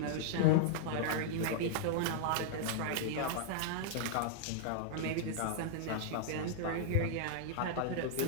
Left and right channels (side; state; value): both; different; correlation -0.01